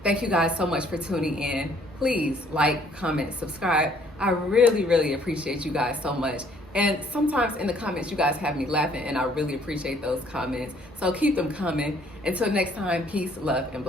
Thank you guys so much for tuning in. Please like, comment, subscribe. I really, really appreciate you guys so much. And sometimes in the comments, you guys have me laughing, and I really appreciate those comments. So keep them coming. Until next time, peace, love, and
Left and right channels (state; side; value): normal; both; correlation 0.61